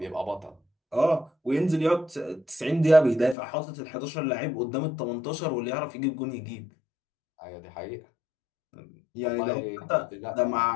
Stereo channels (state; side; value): drops out; right; at 3.4 s